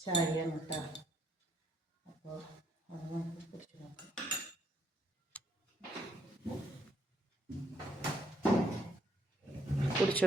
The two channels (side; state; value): both; normal; correlation 0.70